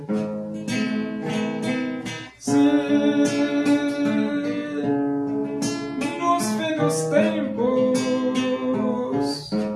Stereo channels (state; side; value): identical; both; correlation 1.00